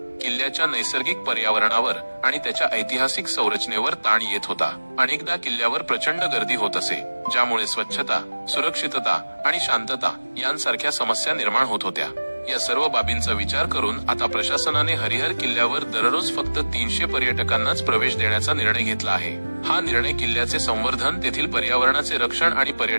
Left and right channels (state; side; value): inverted; both; correlation -1.00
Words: किल्ल्याच्या नैसर्गिक पर्यावरणावर आणि त्याच्या ऐतिहासिक संरचनेवर ताण येत होता। अनेकदा किल्ल्यावर प्रचंड गर्दी होत असे, ज्यामुळे स्वच्छता, सुरक्षितता आणि शांतता यांसारख्या समस्या निर्माण होत होत्या। या सर्व बाबींचा विचार करून आता प्रशासनाने हरिहर किल्ल्यावर दररोज फक्त 300 पर्यटकांनाच प्रवेश देण्याचा निर्णय घेतला आहे। हा निर्णय किल्ल्याचे संवर्धन, तेथील पर्यावरणाचे रक्षण आणि